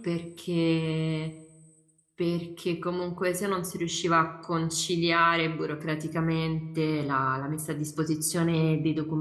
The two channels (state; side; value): identical; both; correlation 1.00